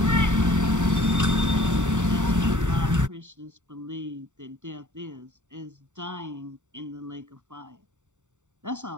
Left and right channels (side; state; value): left; late; 0.85 ms